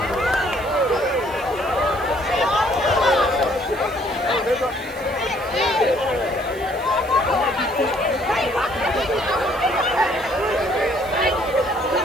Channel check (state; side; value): noise; right; hiss, 21 dB below the sound